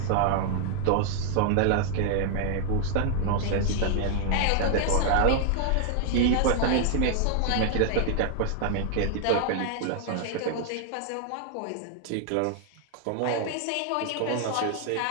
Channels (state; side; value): different; both; correlation 0.00